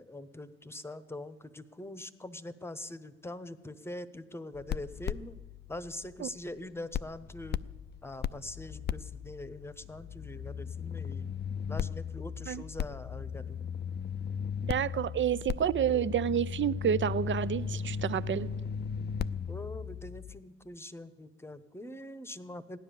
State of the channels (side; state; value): both; normal; correlation 0.26